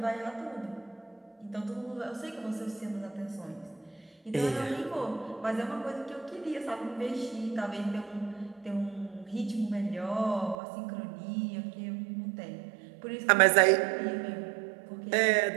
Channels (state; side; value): drops out; left; at 10.6 s